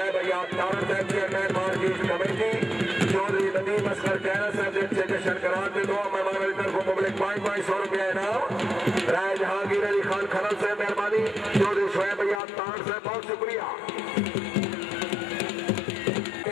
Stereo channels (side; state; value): right; drops out; at 12.4 s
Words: अयाब तारण साहब chairman market committee Chaudhry Nadeem Asghar Kaira साहब एक्सटेंशन करार के 2 मेहमान की तरफ मुबलिक 500 रुपया इनाम। राय जहांगीर अली खान खनल साहब मेहरबानी चौधरी शोएब अयाब तारण साहब बहुत शुक्रिया।